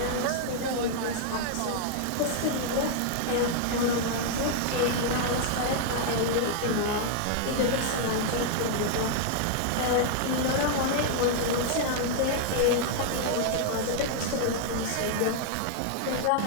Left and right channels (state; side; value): different; both; correlation 0.00